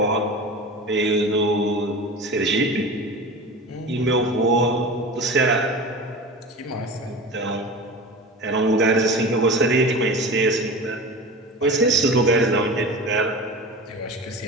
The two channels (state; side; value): normal; both; correlation 0.32